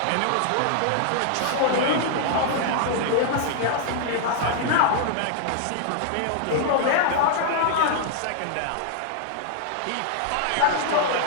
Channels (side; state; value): both; different; correlation -0.01